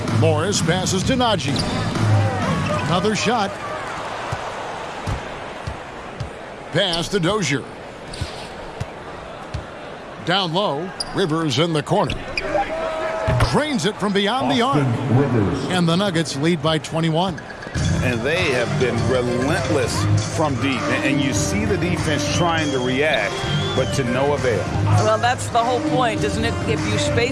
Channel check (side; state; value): both; identical; correlation 1.00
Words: Morris passes to Najee. Another shot. Pass to Dozier. Down low. Rivers in the corner. Drains it from beyond the arc. And the Nuggets lead by 21. And they have been relentless from deep. And you see the defense trying to react, but to no avail. Well, that's the whole point, isn't it? If you